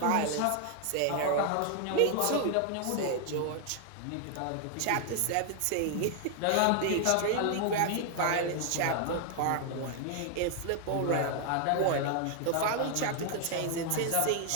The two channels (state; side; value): different; both; correlation 0.00